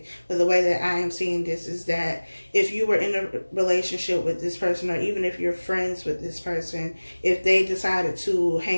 But the way that I am seeing this is that if you were in a relationship with this person, or even if you're friends with this person, if they decided to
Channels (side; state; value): both; inverted; correlation -1.00